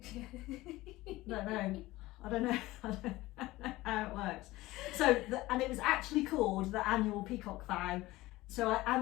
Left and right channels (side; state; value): right; quieter; 18.6 dB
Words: Don't know. I don't know. I don't know how it works. So, and it was actually called the Annual Peacock Vow. So I